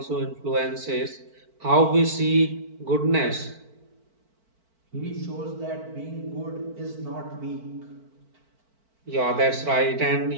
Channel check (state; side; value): late; left; 4.5 ms